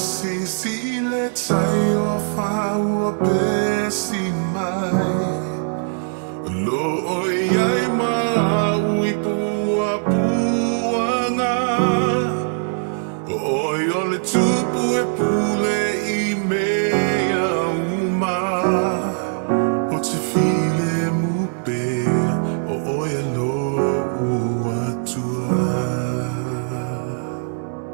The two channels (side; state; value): left; silent; digital silence